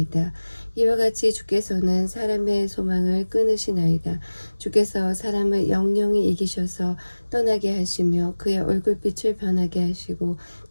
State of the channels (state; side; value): inverted; both; correlation -1.00